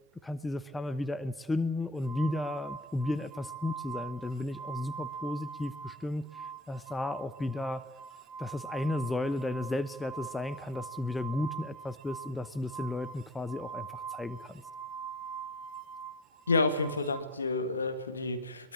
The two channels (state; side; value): normal; both; correlation 0.41